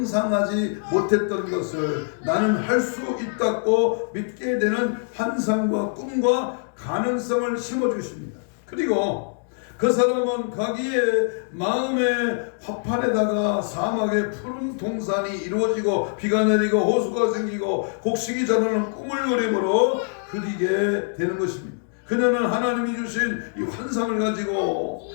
못했던 것을 나는 할 수 있다고 믿게 되는 환상과 꿈과 가능성을 심어주십니다. 그리고 그 사람은 자기의 마음의 화판에다가 사막의 푸른 동산이 이루어지고 비가 내리고 호수가 생기고 곡식이 자라는 꿈을 그림으로 그리게 되는 것입니다. 그녀는 하나님이 주신 이 환상을 가지고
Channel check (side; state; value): right; silent; digital silence